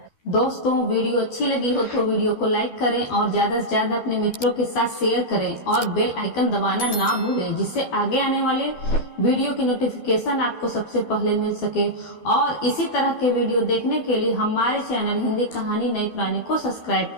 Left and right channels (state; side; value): late; right; 12 ms